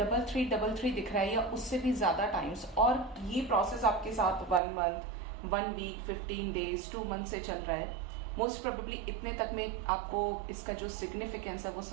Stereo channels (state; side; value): drops out; left; at 4.6 s